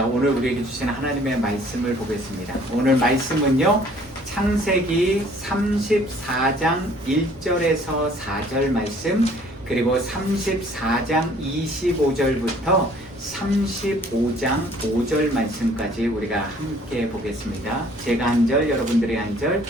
오늘 우리에게 주신 하나님의 말씀을 보겠습니다. 오늘 말씀은요, 창세기 34장 1절에서 4절 말씀, 그리고 34장 25절부터 35장 5절 말씀까지 우리가 함께 보겠습니다. 제가 한 절, 여러분들이 한 절,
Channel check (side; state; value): both; normal; correlation 0.56